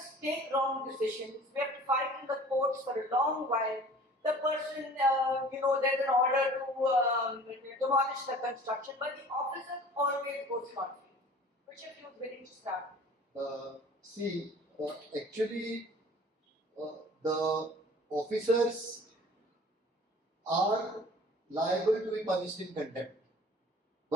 take wrong decisions. We have to fight in the courts for a long while. The person, there's an order to demolish the construction, but the officer always goes scot-free. Which of you is willing to start? Actually, the officers are liable to be punished in contempt.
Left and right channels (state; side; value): normal; both; correlation 0.47